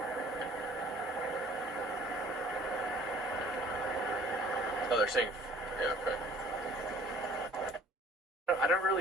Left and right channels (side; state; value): both; normal; correlation 0.52